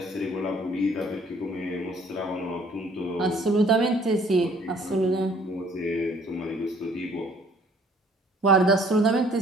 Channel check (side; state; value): both; normal; correlation 0.58